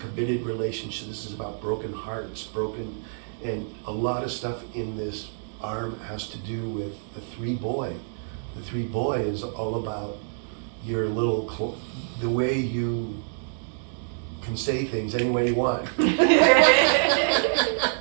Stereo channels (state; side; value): silent; left; digital silence